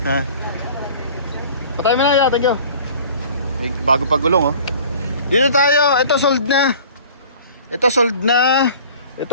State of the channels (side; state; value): both; inverted; correlation -0.46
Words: Ha? Patay mo na ya, thank you. May bago pagulong oh. Dito tayo, ito sold na. Ito sold na.